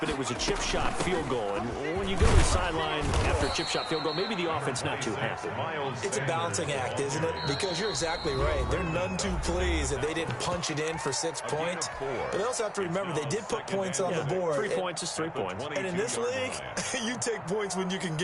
it was a chip shot field goal. And when you go to the sideline after a chip shot field goal, maybe the offense not too happy. It's a balancing act, isn't it? Because you're exactly right. They're none too pleased that they didn't punch it in for 6 points. But they also have to remember they did put points on the board. 3 points is 3 points. And in this league, you take points when you can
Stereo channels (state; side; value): identical; both; correlation 1.00